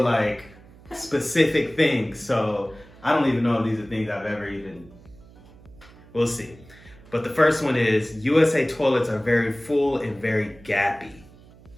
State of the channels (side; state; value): right; noise; hum, 23 dB below the sound